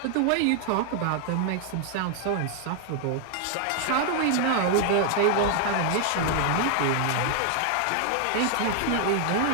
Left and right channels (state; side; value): different; both; correlation 0.00